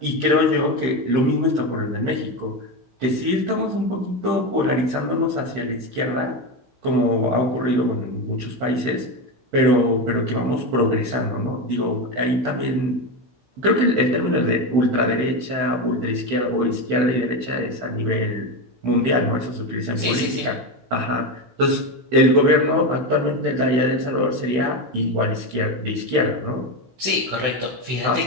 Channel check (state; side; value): late; left; 15 ms